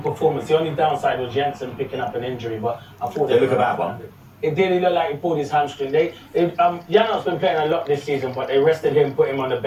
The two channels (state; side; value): identical; both; correlation 1.00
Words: performance. The only downside was Jensen picking up an injury, but I thought they look a bad one. It did. He looked like he pulled his hamstring. Yano's been playing a lot this season, but they rested him, put him on the